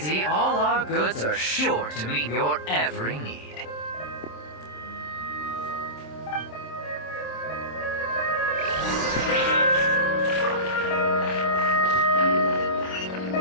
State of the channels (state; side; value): late; right; 26 ms